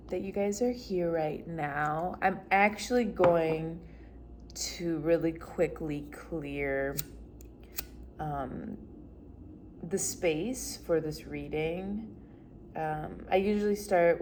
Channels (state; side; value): identical; both; correlation 1.00